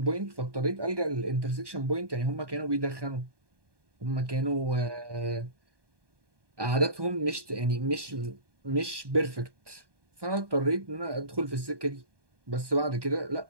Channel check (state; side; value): late; left; 1.2 ms